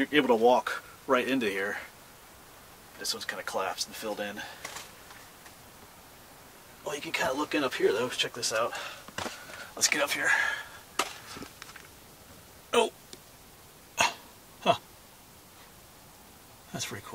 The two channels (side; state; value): both; identical; correlation 1.00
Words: able to walk right into here. This one's kind of collapsed and filled in. Well, you can kind of look in up here though. Check this out. Let's get up here. Oh! Huh. That's pretty